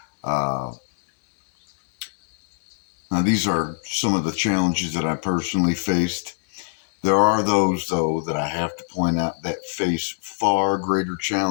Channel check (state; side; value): silent; right; 63 dB below the other